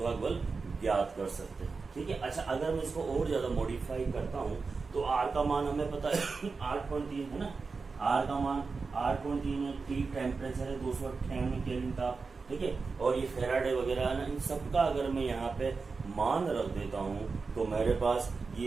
बल ज्ञात कर सकते हैं। ठीक है, अच्छा, अगर मैं इसको और ज्यादा मॉडिफाई करता हूँ तो आर का मान हमें पता है 8.3 है ना, आर का मान 8.3 है, टी टेम्परेचर है 298 केल्विन ताप, ठीक है। और ये फेराडे वगैरह है ना, इन सबका अगर मैं यहाँ पे मान रख देता हूँ तो मेरे पास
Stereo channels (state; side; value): quieter; left; 4.5 dB